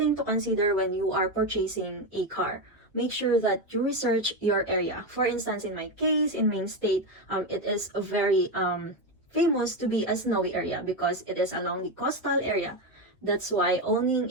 to consider when you are purchasing a car. Make sure that you research your area. For instance, in my case, in Main State, it is a very famous to be a snowy area because it is along the coastal area. That's why owning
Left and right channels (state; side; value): normal; both; correlation 0.12